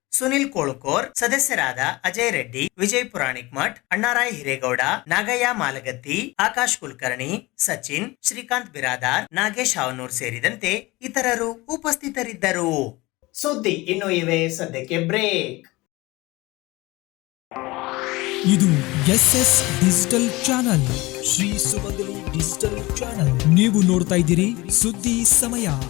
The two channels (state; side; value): quieter; right; 21.6 dB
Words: ಸುನಿಲ್ ಕೋಳುಕೋರ್, ಸದಸ್ಯರಾದ ಅಜಯ್ ರೆಡ್ಡಿ, ವಿಜಯ್ ಪುರಾಣಿಕ್ ಮಠ್, ಅಣ್ಣಾರಾಯ್ ಹಿರೇಗೌಡ, ನಾಗಯ್ಯ ಮಾಲಗತ್ತಿ, ಆಕಾಶ್ ಕುಲಕರ್ಣಿ, ಸಚಿನ್, ಶ್ರೀಕಾಂತ್ ಬಿರಾದಾರ್, ನಾಗೇಶ್ ಹಾವನೂರ್ ಸೇರಿದಂತೆ ಇತರರು ಉಪಸ್ಥಿತರಿದ್ದರು. ಸುದ್ದಿ ಇನ್ನು ಇವೆ, ಸದ್ಯಕ್ಕೆ ಬ್ರೇಕ್. ಇದು SS ಡಿಜಿಟಲ್ ಚಾನಲ್, ಶ್ರೀ ಸುಮಂಗಲಿ ಡಿಜಿಟಲ್ ಚಾನಲ್. ನೀವು ನೋಡ್ತಾ ಇದ್ದೀರಿ ಸುದ್ದಿ ಸಮಯ,